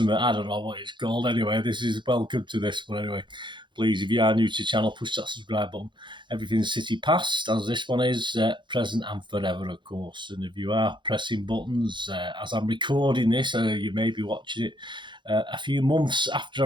I don't know what it's called. Anyway, this is welcome to this one. Anyway, please, if you are new to the channel, push that subscribe button. Everything's City past, as this one is, present and forever, of course. And if you are pressing buttons as I'm recording this, you may be watching it a few months after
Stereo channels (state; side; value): late; left; 0.23 ms